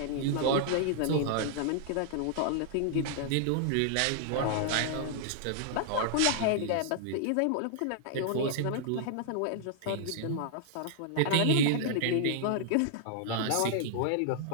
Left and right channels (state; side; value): different; both; correlation -0.01